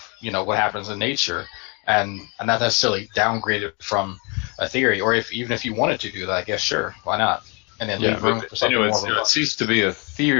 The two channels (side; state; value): right; quieter; 31.5 dB